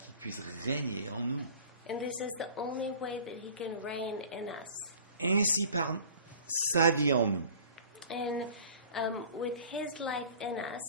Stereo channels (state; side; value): inverted; both; correlation -0.45